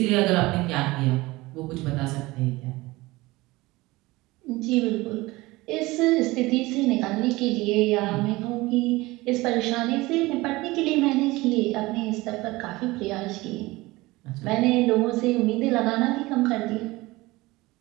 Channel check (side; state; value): left; quieter; 20.7 dB